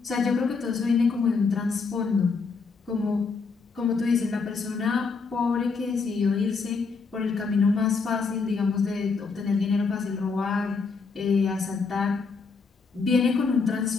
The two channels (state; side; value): quieter; right; 4.7 dB